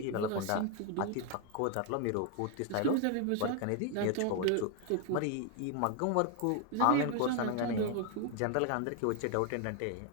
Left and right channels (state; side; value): different; both; correlation 0.01